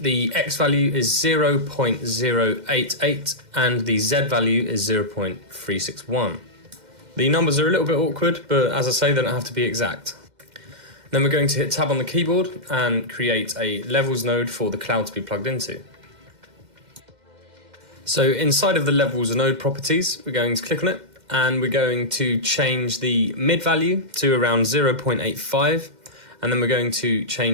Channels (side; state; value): left; late; 2.1 ms